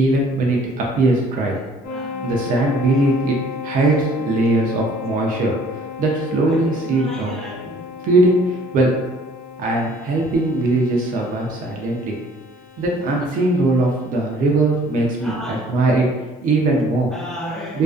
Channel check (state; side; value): normal; both; correlation 0.57